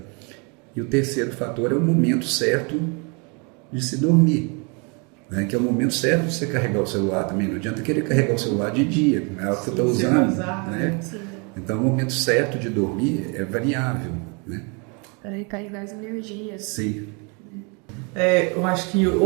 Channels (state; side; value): quieter; left; 33.1 dB